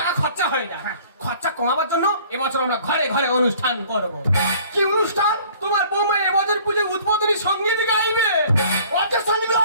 খরচা হয়ে যায়। খরচা কমাবার জন্য এবছর আমরা ঘরে ঘরে অনুষ্ঠান করব। কি অনুষ্ঠান? তোমার বৌমা এবছর পুজোয় উদ্বোধনী সঙ্গীত গাইবে। অর্ধেক সঙ্গীত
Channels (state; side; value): inverted; both; correlation -0.52